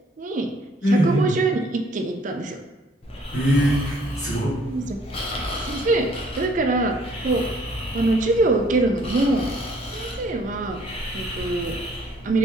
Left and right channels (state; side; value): normal; both; correlation 0.60